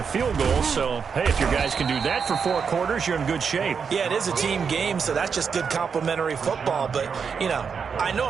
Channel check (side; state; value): left; quieter; 6.2 dB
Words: a field goal. So, hey, if your guys can do that for 4 quarters, you're in good shape. Yeah, it is a team game, so that's just good complimentary football. But, you know, I know